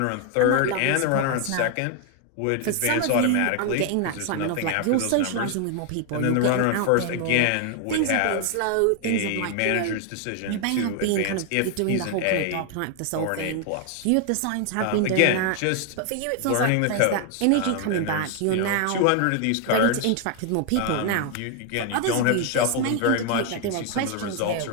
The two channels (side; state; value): both; different; correlation 0.00